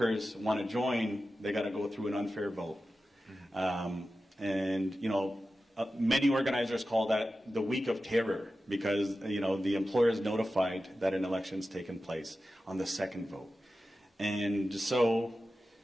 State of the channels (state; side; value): normal; both; correlation 0.93